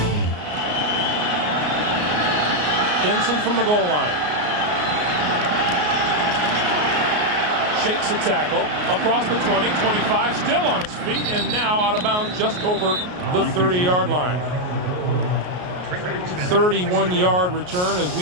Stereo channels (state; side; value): late; left; 33 ms